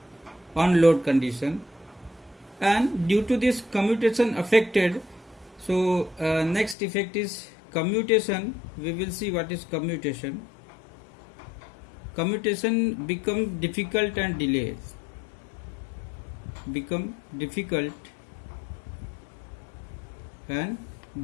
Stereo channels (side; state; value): right; drops out; at 6.8 s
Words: on load condition, and due to this commutation affected, so next effect is commutation. We will see what is commutation. Commutation become difficult and delayed.